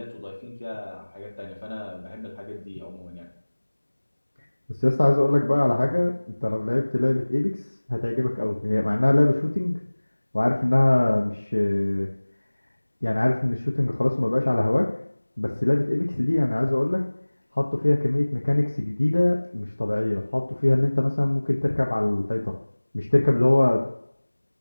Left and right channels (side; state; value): both; inverted; correlation -1.00